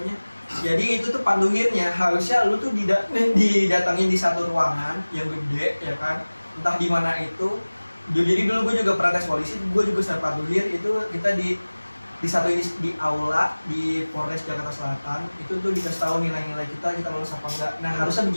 Jadi itu tuh panduhirnya harusnya lu tuh didatangin di satu ruangan yang gede ya kan, entah di mana itu. Jadi dulu gue juga pernah tes polisi, gue juga sama panduhir itu kita di satu ini di aula di Polres Jakarta Selatan itu tuh dikasih tahu nilai-nilai kita lulus apa enggak. Nah harusnya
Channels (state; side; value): inverted; both; correlation -1.00